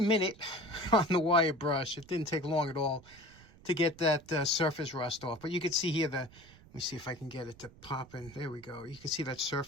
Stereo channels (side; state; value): right; noise; rumble, 23 dB below the sound